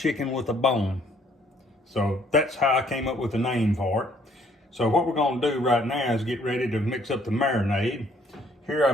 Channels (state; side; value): normal; both; correlation 0.63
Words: with a bone. So that's how I came up with the name for it. So what we're going to do right now is get ready to mix up the marinade. Here